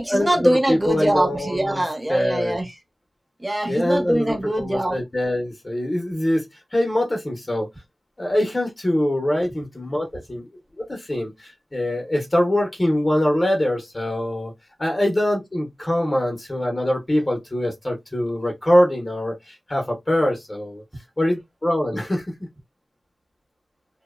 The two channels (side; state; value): both; normal; correlation 0.97